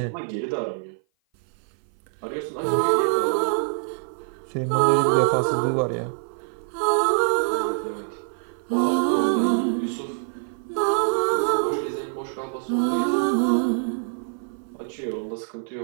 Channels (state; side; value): silent; left; 56 dB below the other